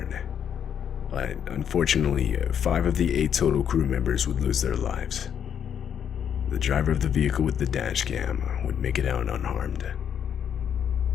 But unfortunately, 5 of the 8 total crew members would lose their lives. The driver of the vehicle with the dash cam would make it out unharmed.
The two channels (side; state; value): right; quieter; 8.5 dB